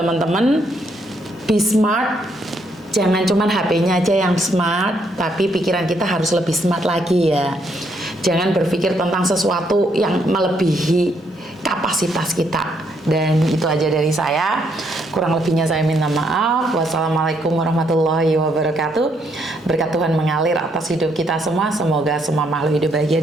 be smart. Jangan cuman HP-nya aja yang smart, tapi pikiran kita harus lebih smart lagi ya. Jangan berpikir tentang sesuatu yang melebihi kapasitas kita. Dan itu aja dari saya. Kurang lebihnya saya minta maaf. Wassalamualaikum warahmatullahi wabarakatuh. Berkat Tuhan mengalir atas hidup kita semua. Semoga semua makhluk hidup bahagia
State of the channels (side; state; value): both; normal; correlation 0.73